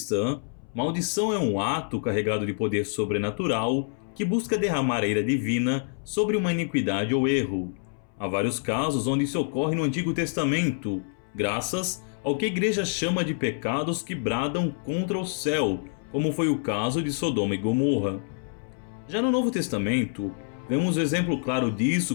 maldição é um ato carregado de poder sobrenatural que busca derramar a ira divina sobre uma iniquidade ou erro. Há vários casos onde isso ocorre no Antigo Testamento, graças ao que a igreja chama de pecados que bradam contra o céu, como foi o caso de Sodoma e Gomorra. Já no Novo Testamento, vemos um exemplo claro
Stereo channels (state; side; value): silent; right; 60 dB below the other